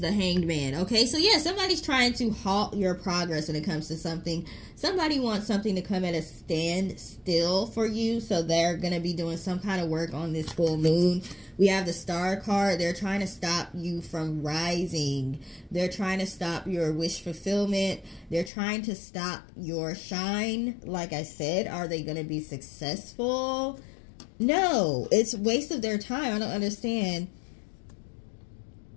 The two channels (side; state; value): right; drops out; at 18.5 s